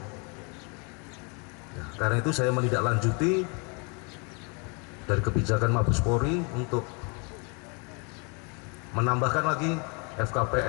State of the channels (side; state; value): right; quieter; 33.8 dB